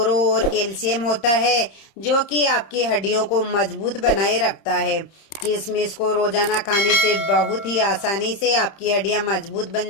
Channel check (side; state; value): right; late; 30 ms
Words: और कैल्शियम होता है, जो कि आपकी हड्डियों को मजबूत बनाए रखता है। किशमिश को रोजाना खाने से बहुत ही आसानी से आपकी हड्डियां मजबूत